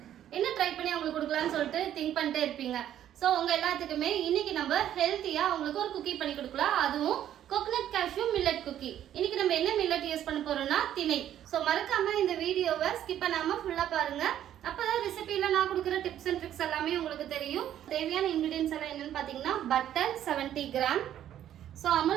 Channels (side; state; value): left; quieter; 11.1 dB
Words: என்ன ட்ரை பண்ணி அவங்களுக்கு கொடுக்கலாம்னு சொல்லிட்டு திங்க் பண்ணிட்டே இருப்பீங்க. ஸோ உங்க எல்லாத்துக்குமே இன்னைக்கு நம்ம ஹெல்த்தியா அவங்களுக்கு ஒரு குக்கி பண்ணி கொடுக்கலாம். அதுவும் கோகனட் கேஷ்யூ மில்லட் குக்கி. இன்னைக்கு நம்ம என்ன மில்லட் யூஸ் பண்ண போறோம்னா திணை. ஸோ மறக்காம இந்த வீடியோவை ஸ்கிப் பண்ணாம ஃபுல்லா பாருங்க. அப்பதான் ரெசிபியில நான் கொடுக்குற டிப்ஸ் அண்ட் ட்ரிக்ஸ் எல்லாமே உங்களுக்கு தெரியும். தேவையான இன்கிரீடியன்ஸ் எல்லாம் என்னன்னு பாத்தீங்கன்னா butter 70 gram. So